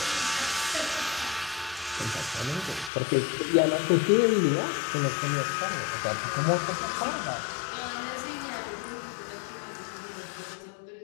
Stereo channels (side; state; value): right; drops out; at 2.9 s